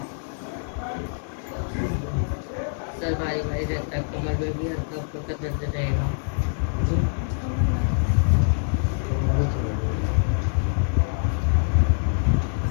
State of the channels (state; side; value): silent; right; digital silence